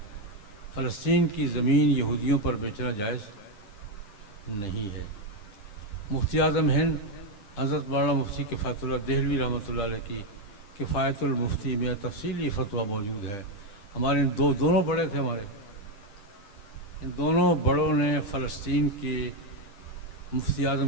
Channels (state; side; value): late; right; 10 ms